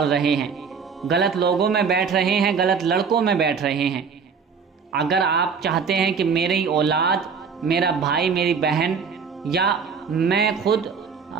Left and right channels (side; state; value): left; quieter; 5.9 dB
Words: رہے ہیں، غلط لوگوں میں بیٹھ رہے ہیں، غلط لڑکوں میں بیٹھ رہے ہیں، اگر آپ چاہتے ہیں کہ میری اولاد، میرا بھائی، میری بہن یا میں خود